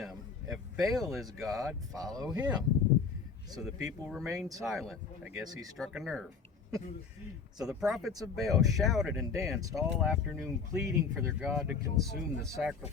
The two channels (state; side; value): quieter; right; 5.5 dB